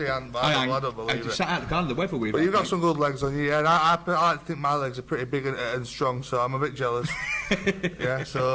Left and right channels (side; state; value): both; identical; correlation 1.00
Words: hasn't, but I don't believe it. Sat out the car in the weather with But you've got some good legs on you, yeah. And I think my legs are pretty big and strong, so I'm a bit jealous. Yeah,